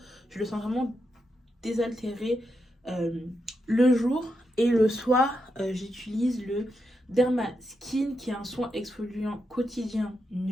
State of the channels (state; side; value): normal; both; correlation 0.85